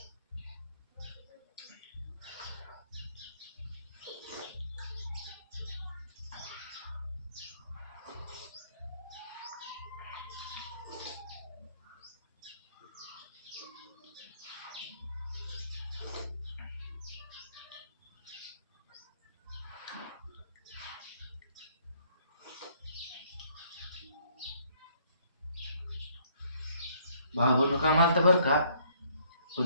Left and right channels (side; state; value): both; inverted; correlation -0.64